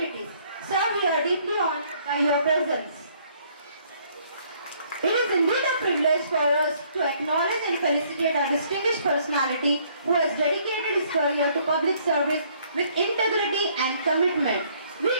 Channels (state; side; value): inverted; both; correlation -0.64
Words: Sir, we are deeply honored by your presence. It is indeed a privilege for us to acknowledge and felicitate a distinguished personality who has dedicated his career to public service with integrity and commitment. We